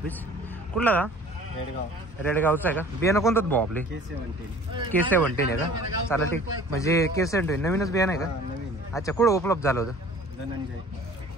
कुठला दादा? रेडगावचा आहे का? बियाणं कोणतं भाऊ आपले? K17 आहे का? चालेल ठीक. म्हणजे K17 नवीनच बियाणं आहे का? अच्छा कुठं उपलब्ध झालं होतं?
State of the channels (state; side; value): normal; both; correlation 0.48